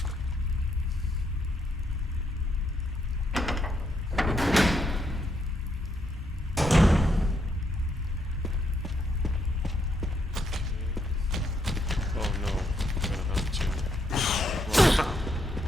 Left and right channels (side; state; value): both; normal; correlation 0.76